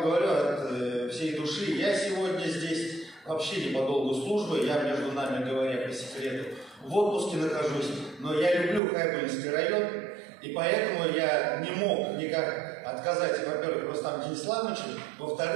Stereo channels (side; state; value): left; drops out; at 8.8 s